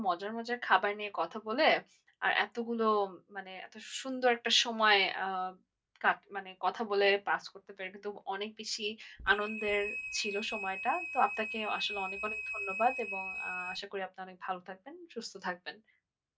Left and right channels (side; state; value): both; identical; correlation 1.00